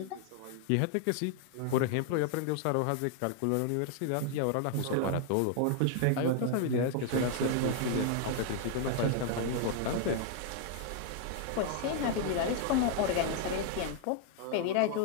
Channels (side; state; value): both; different; correlation 0.00